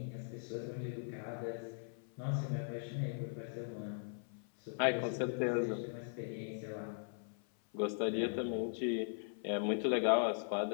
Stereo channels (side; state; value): right; silent; 51 dB below the other